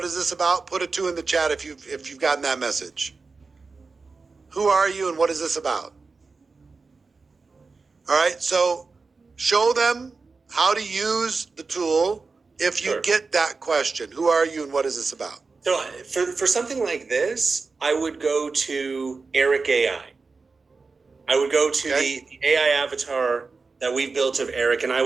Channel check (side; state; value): left; quieter; 4.3 dB